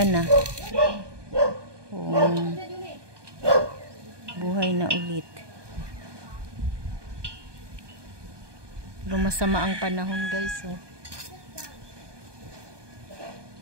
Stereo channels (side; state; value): left; late; 1.2 ms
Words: na. Buhay na ulit. Pero masama ang panahon, guys, oh.